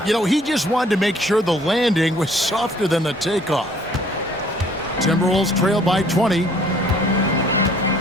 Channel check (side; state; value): both; normal; correlation 0.58